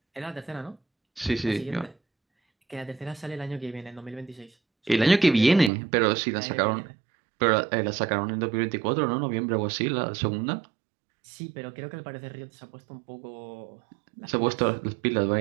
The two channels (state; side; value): drops out; left; at 5.7 s